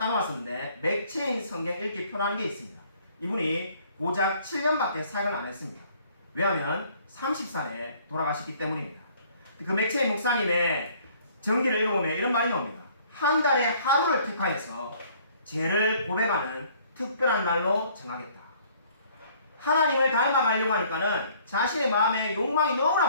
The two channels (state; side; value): inverted; both; correlation -0.58